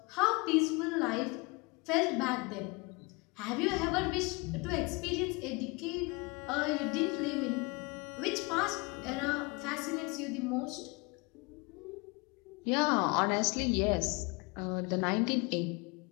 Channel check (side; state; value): right; quieter; 27.9 dB